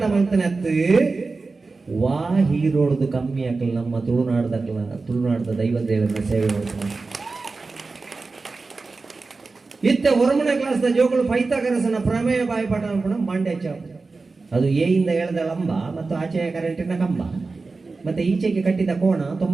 ಮಾಡ್ತಾನತ್ತು ವಾ ಹೀರೋಡ್ದು ಕಮ್ಮಿ ಹಾಕಲ್ಲ ನಮ್ಮ ತುಳುನಾಡದ ದೈವದೇವರ ಸೇವೆ ಮಾಡ್ತಾನೆ ಇತ್ತ ಹೊರಮನೆ ಕ್ಲಾಸ್ ಜೋಗಳು ಪೈಥಾಗರಸನ ಪ್ರಮೇಯ ಬಾಯಿಪಾಠ ಮಾಡ್ಕೊಂಡು ಮಂಡ್ಯ ಅದು ಎಯಿಂದ ಎಳೆದ ಲಂಬ ಮತ್ತು ಆಚೆಯ ಕರೆಂಟಿನ ಕಂಬ ಮತ್ತೆ ಈಚೆಗೆ ಕಟ್ಟಿದ ಕೋಣ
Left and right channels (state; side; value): quieter; left; 3.9 dB